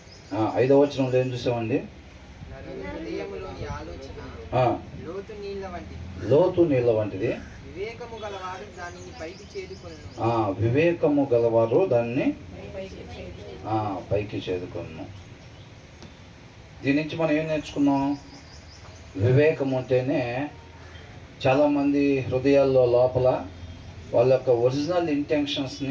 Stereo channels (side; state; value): both; identical; correlation 1.00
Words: 5వ వచనంలో ఏం చూసామండి? లోతు నీళ్ళ వంటిది, వివేకము గలవారు దాన్ని పైకి చేదుకొను. దీని నుంచి మనం ఏం నేర్చుకున్నాం? వివేకం ఉంటేనే చాలామంది హృదయాల్లో లోపల వాళ్ళ యొక్క ఒరిజినల్